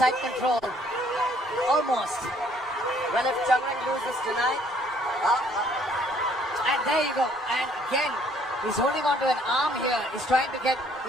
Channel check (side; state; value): both; normal; correlation 0.62